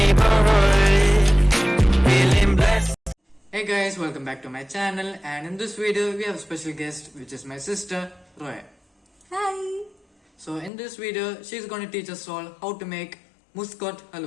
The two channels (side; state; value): right; drops out; at 10.7 s